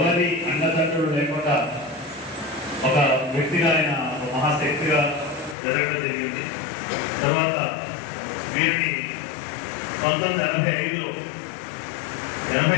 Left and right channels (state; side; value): drops out; right; at 5.6 s